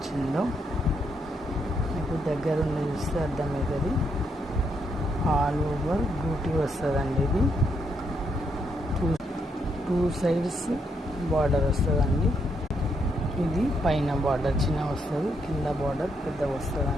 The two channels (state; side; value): normal; both; correlation 0.77